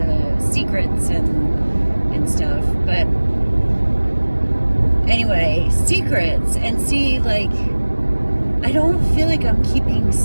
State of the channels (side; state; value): both; inverted; correlation -1.00